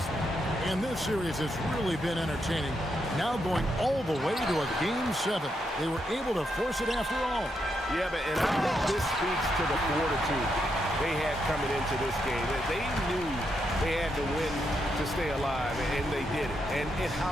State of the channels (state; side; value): normal; both; correlation 0.81